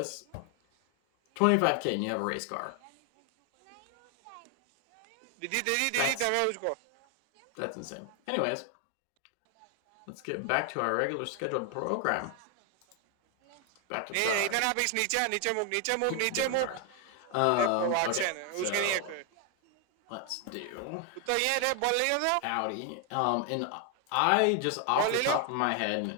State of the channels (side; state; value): both; different; correlation 0.00